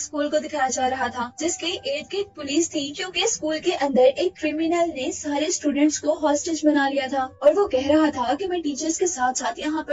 को दिखाया जा रहा था जिसके इर्द गिर्द पुलिस थी, क्योंकि स्कूल के अंदर एक क्रिमिनल ने सारे स्टूडेंट्स को हॉस्टेज बना लिया था और वो कह रहा था कि मैं टीचर्स के साथ साथ यहाँ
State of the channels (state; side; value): identical; both; correlation 1.00